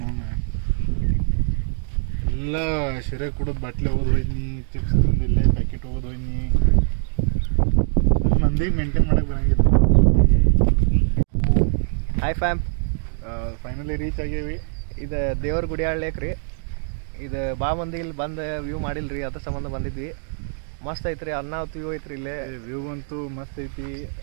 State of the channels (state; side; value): silent; left; 63 dB below the other